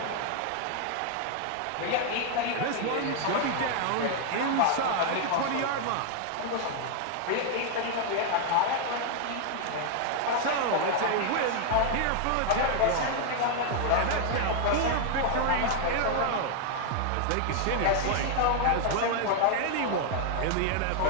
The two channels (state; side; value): different; both; correlation 0.00